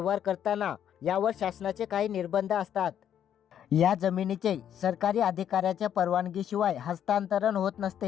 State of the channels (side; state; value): right; quieter; 9.7 dB